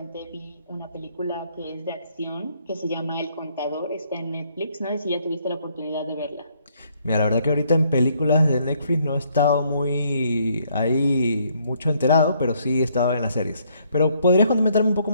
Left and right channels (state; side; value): inverted; both; correlation -0.68